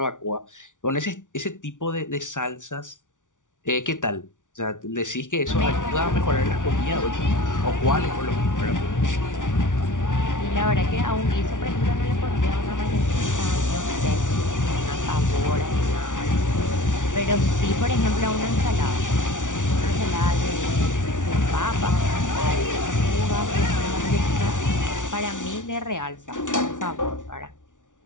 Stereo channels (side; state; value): right; late; 0.87 ms